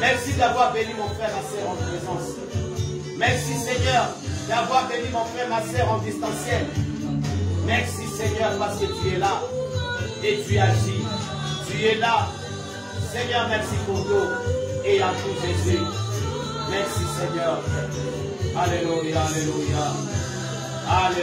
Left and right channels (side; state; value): both; identical; correlation 1.00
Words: d'avoir béni mon frère, ma soeur en présence. Merci Seigneur d'avoir béni mon frère, ma soeur en distanciel. Merci Seigneur parce que tu es là et tu agis. Tu es là. Seigneur, merci pour tout et à tout Jésus. Merci Seigneur. Alléluia, alléluia.